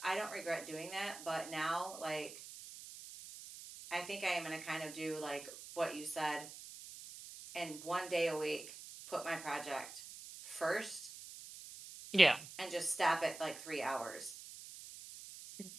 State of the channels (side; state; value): right; noise; hiss, 13 dB below the sound